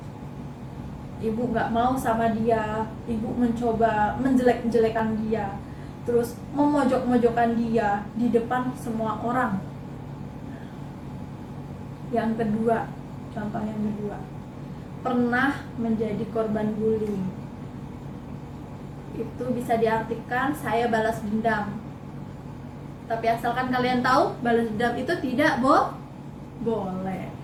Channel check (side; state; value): both; identical; correlation 1.00